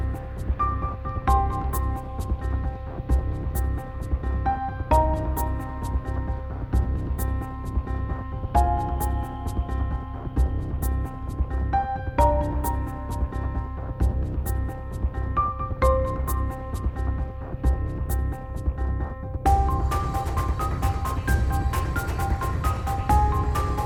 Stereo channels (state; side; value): identical; both; correlation 1.00